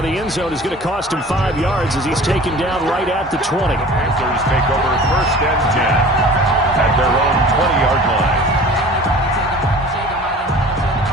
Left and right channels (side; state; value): both; normal; correlation 0.43